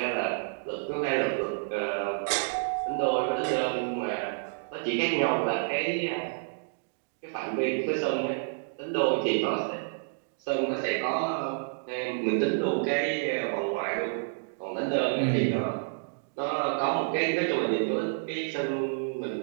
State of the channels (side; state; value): left; silent; digital silence